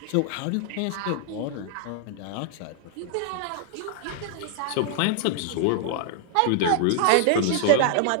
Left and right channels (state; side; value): different; both; correlation 0.00